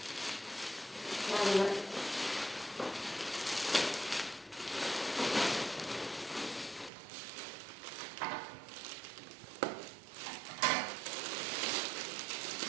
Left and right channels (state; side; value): drops out; left; at 6.9 s